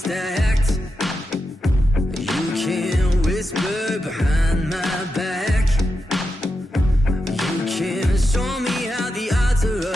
You can whisper behind my back. You can show me how the odds are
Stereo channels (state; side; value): normal; both; correlation 0.88